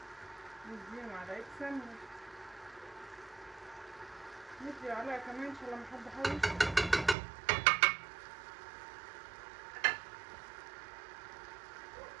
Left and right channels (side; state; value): left; drops out; at 7.2 s